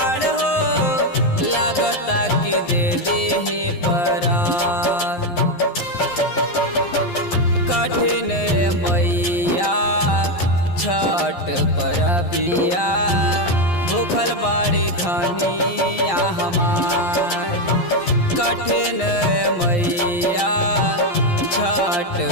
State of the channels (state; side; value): late; right; 11 ms